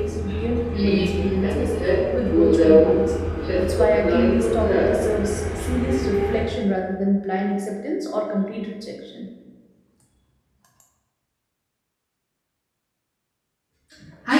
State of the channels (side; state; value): both; identical; correlation 1.00